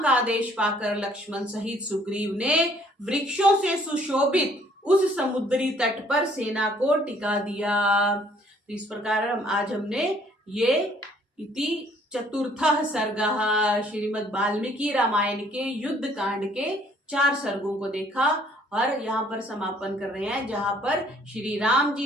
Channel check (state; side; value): normal; both; correlation 0.61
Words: का आदेश पाकर लक्ष्मण सहित सुग्रीव ने वृक्षों से सुशोभित उस समुद्री तट पर सेना को टिका दिया। तो इस प्रकार आज हमने ये इति चतुर्थः सर्गः श्रीमद् वाल्मीकि रामायण के युद्ध कांड के 4 सर्गों को देखा, और यहाँ पर समापन कर रहे हैं जहाँ पर श्री राम